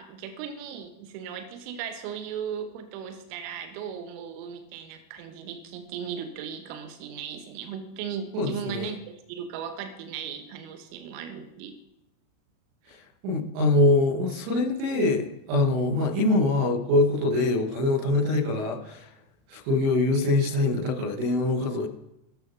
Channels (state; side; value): late; left; 37 ms